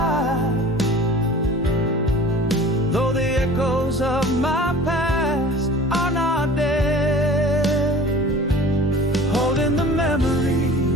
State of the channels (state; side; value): normal; both; correlation 0.43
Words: Though the echoes of my past are not dead, holding the